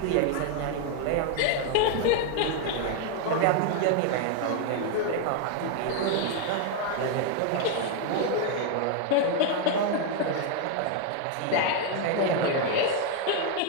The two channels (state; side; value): different; both; correlation 0.01